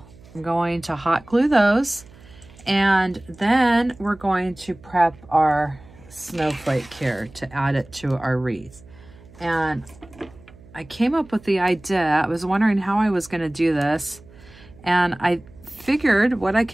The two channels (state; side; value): noise; right; hum, 23 dB below the sound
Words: I'm going to hot glue those, and then we're going to prep our snowflake here to add it to our wreath. And I came up with the idea. I was wondering how I was going to do this, and I figured what I